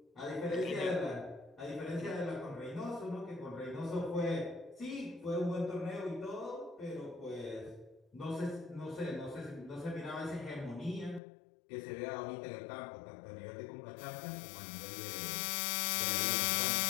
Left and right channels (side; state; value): right; drops out; at 11.2 s